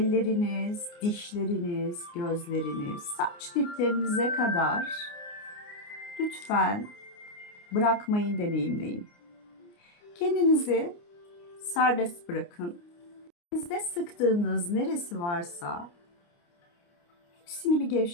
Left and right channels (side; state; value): right; late; 29 ms